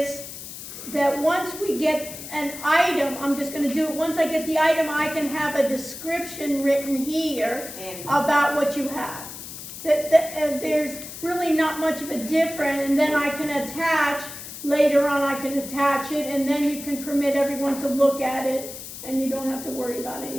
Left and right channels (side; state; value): left; noise; hiss, 11 dB below the sound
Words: that once we get an item, I'm just going to do it. Once I get the item, I can have a description written here about what you have. There's really not much of a difference, and then I can attach, later on I can attach it, and then you can permit everyone to look at it, and you don't have to worry about